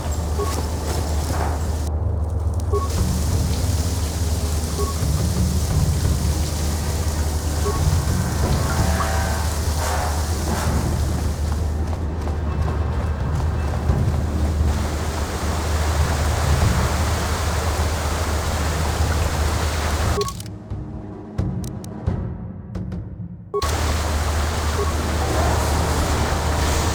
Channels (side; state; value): both; identical; correlation 1.00